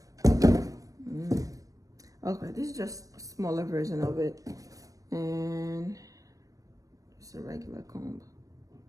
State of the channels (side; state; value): left; late; 0.16 ms